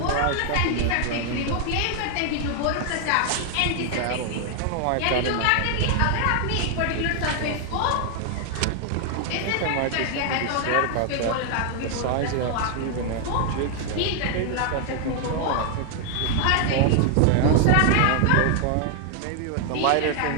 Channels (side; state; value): both; different; correlation 0.00